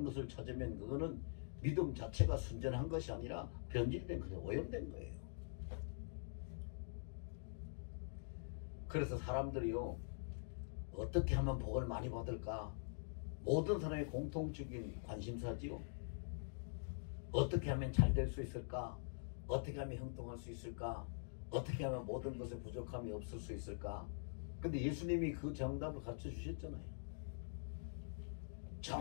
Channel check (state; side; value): silent; right; digital silence